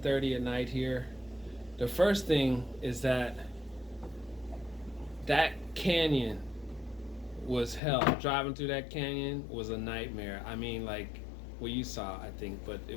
at night here. The first thing is that canyon was hell. Driving through that canyon was a nightmare. I mean, like, well, you saw, I think, but it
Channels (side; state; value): right; drops out; at 7.8 s